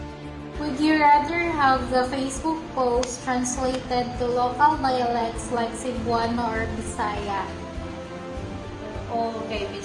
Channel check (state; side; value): identical; both; correlation 1.00